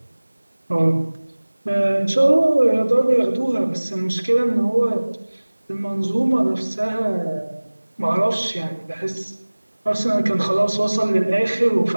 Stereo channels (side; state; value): both; inverted; correlation -1.00